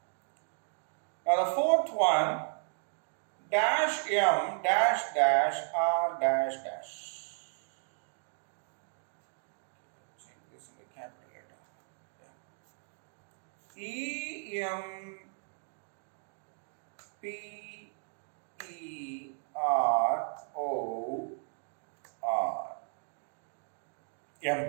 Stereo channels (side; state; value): left; silent; 55 dB below the other